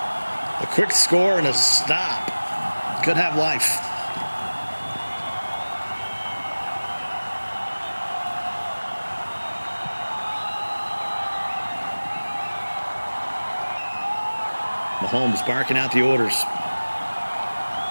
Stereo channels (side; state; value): both; inverted; correlation -1.00